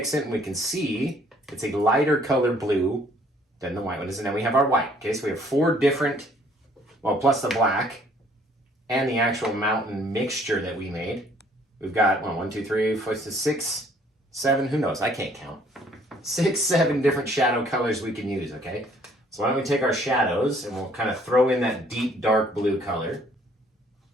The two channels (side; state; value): both; normal; correlation 0.61